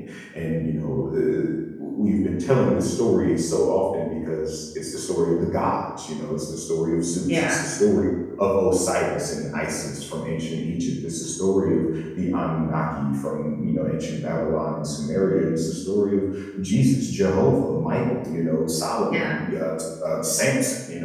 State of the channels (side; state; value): both; identical; correlation 1.00